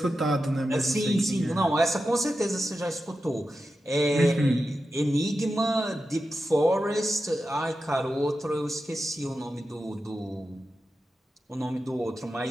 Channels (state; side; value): normal; both; correlation 0.91